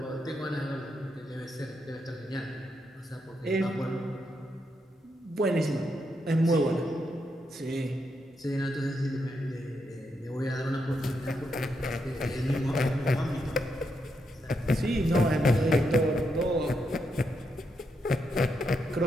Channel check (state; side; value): normal; both; correlation 0.81